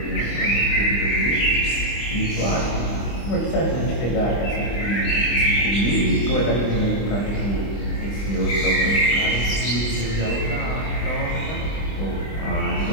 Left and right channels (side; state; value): right; late; 25 ms